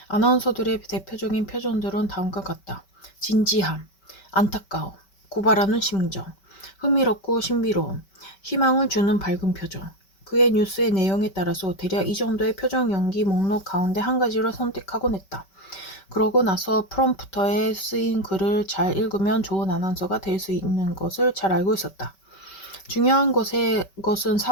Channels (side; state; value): right; late; 5.2 ms